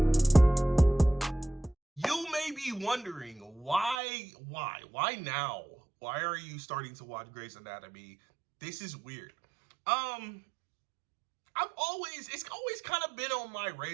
You may be wondering, why now? Why are you starting to watch Grey's Anatomy? This is weird. It's always kind of been on my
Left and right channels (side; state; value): left; drops out; at 4.0 s